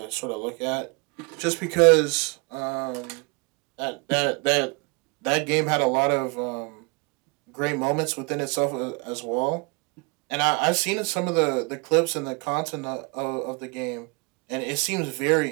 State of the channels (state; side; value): quieter; left; 30.9 dB